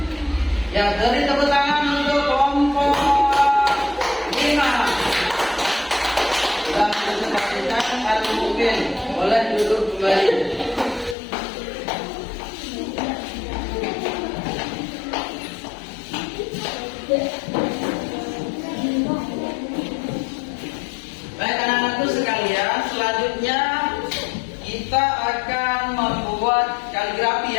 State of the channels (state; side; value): drops out; right; at 11.2 s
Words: Ya, beri tepuk tangan untuk kelompok 5. Sudah presentasikan Al-Mu'min. Boleh duduk kembali. Baik anak-anakku sekalian, selanjutnya kita akan membuat